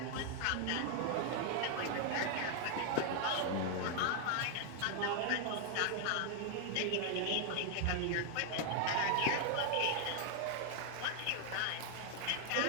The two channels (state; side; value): different; both; correlation 0.00